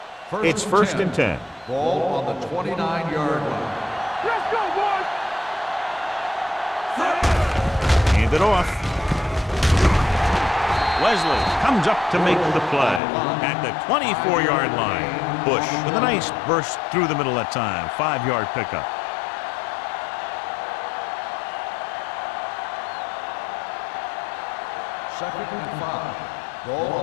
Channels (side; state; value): right; drops out; at 13.0 s